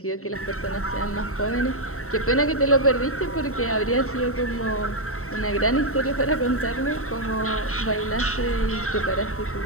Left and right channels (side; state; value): right; late; 0.63 ms